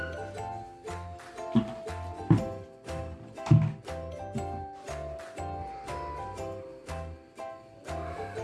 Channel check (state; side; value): identical; both; correlation 1.00